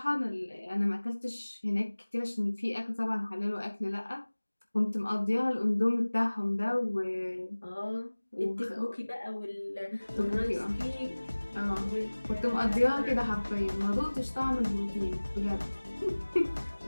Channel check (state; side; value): inverted; both; correlation -1.00